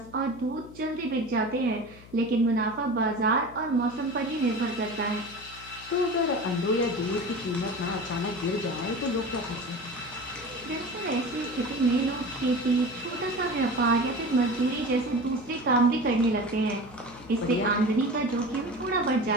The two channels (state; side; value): noise; left; hum, 20 dB below the sound